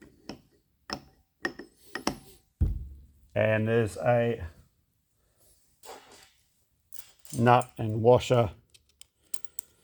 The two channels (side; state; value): both; identical; correlation 1.00